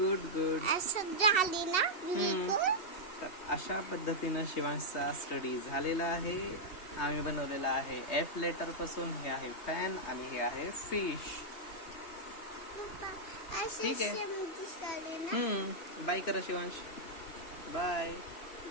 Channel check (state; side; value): late; right; 2.7 ms